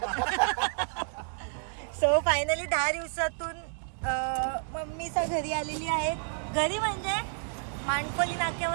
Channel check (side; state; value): left; silent; digital silence